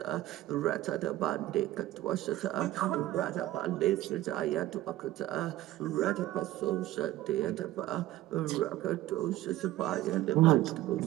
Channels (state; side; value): quieter; left; 15.4 dB